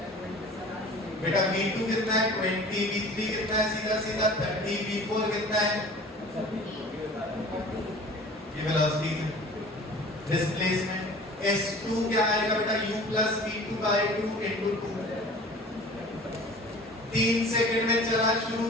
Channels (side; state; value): both; normal; correlation 0.44